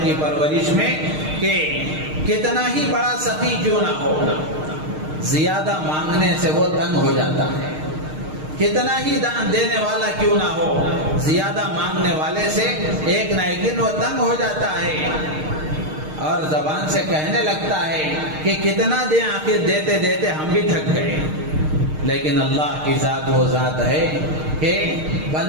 کی پرورش میں کہ کتنا ہی بڑا سخی کیوں نہ ہو، زیادہ مانگنے سے وہ تنگ ہو جاتا ہے، کتنا ہی دان دینے والا کیوں نہ ہو، زیادہ مانگنے والے سے ایک نہ ایک دن وہ تنگ ہو جاتا ہے اور زبان سے کہنے لگتا ہے کہ کتنا دیں، آخر دیتے دیتے ہم بھی تھک گئے۔ لیکن اللہ کی ذات وہ ذات ہے کہ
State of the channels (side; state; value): left; late; 6.5 ms